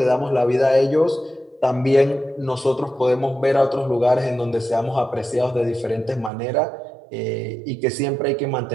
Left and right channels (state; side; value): drops out; left; at 6.3 s